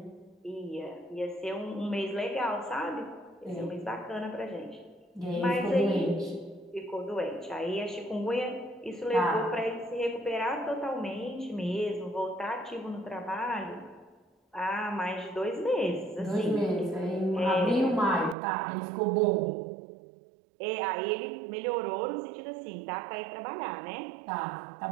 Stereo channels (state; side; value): drops out; left; at 18.4 s